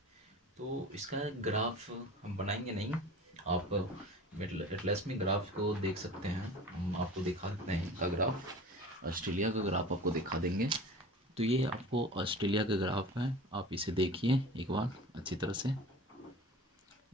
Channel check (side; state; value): both; normal; correlation 0.39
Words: तो इसका ग्राफ हम बनाएंगे नहीं, आप एटलस में ग्राफ को देख सकते हैं। हम आपको दिखा देते हैं इसका ग्राफ, ऑस्ट्रेलिया का ग्राफ आपको दिखा देंगे। तो ये आपको ऑस्ट्रेलिया का ग्राफ है, आप इसे देखिए एक बार अच्छी तरह से।